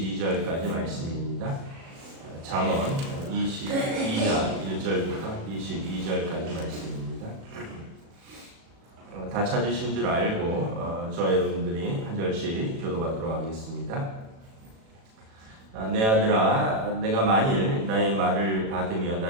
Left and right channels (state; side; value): late; left; 36 ms